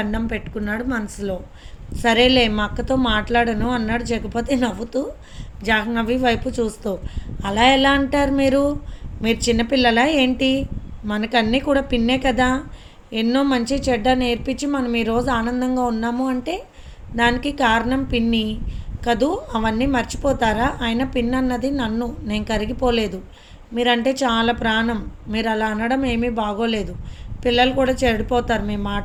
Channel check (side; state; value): both; identical; correlation 1.00